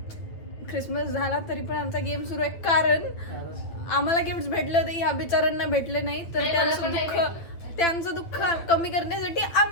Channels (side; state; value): right; late; 9.1 ms